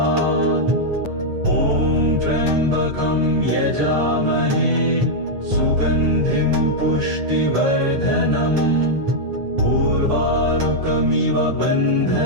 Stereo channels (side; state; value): left; late; 8.6 ms